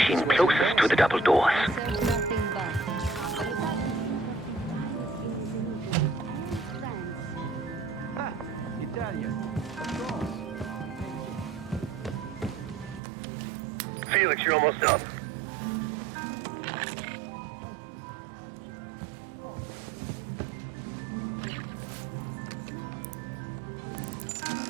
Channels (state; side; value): drops out; left; at 13.0 s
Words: closest to the double doors. Felix, you're almost up.